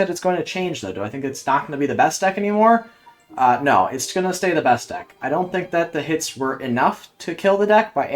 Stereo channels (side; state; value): both; identical; correlation 1.00